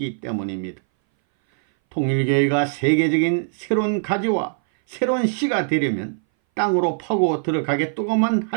때문입니다. 통일교회가 세계적인 새로운 가지와 새로운 씨가 되려면 땅으로 파고 들어가겠다고만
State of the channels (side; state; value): left; silent; 60 dB below the other